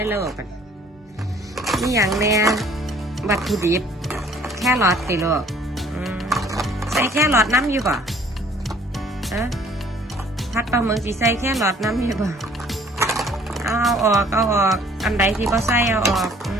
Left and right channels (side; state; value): both; normal; correlation 0.56